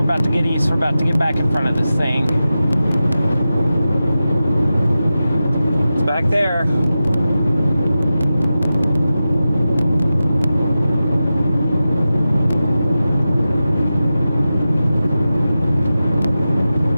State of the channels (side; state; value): both; inverted; correlation -0.93